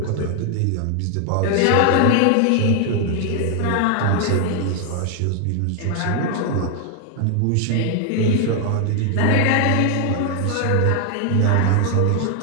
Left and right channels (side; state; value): both; different; correlation 0.00